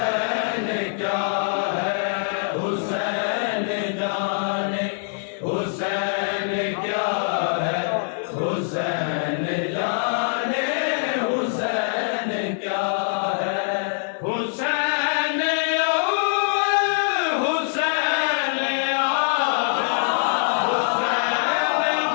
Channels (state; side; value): silent; right; 57 dB below the other